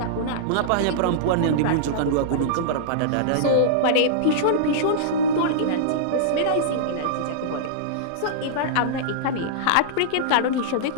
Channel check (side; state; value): both; different; correlation -0.02